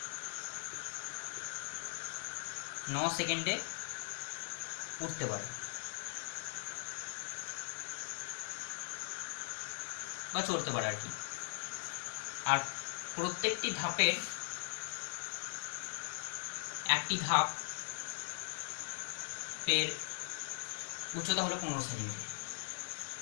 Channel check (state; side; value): silent; right; digital silence